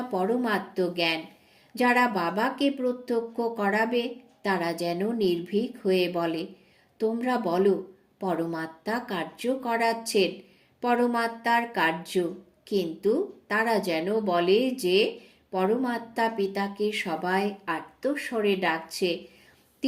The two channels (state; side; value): identical; both; correlation 1.00